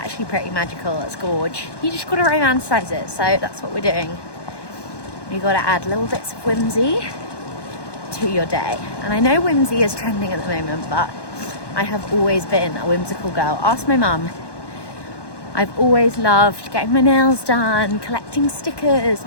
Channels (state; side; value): late; right; 1.1 ms